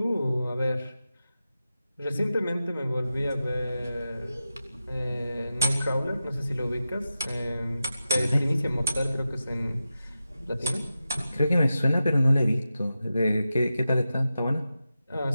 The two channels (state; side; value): inverted; both; correlation -0.91